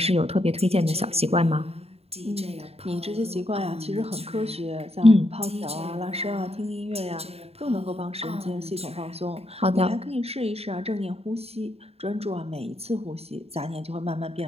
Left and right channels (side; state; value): left; late; 0.29 ms